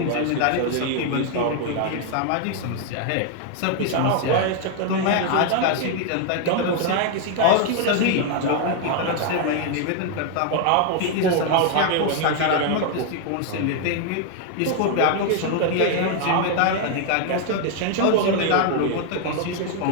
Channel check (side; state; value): both; different; correlation 0.00